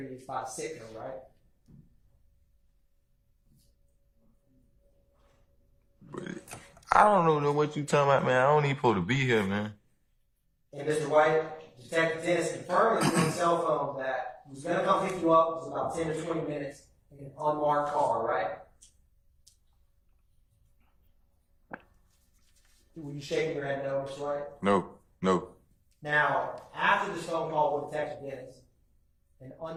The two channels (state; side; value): identical; both; correlation 1.00